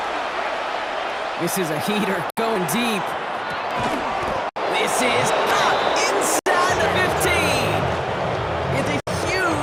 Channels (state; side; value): identical; both; correlation 1.00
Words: This is a heater going deep. This is up inside the 15. It's a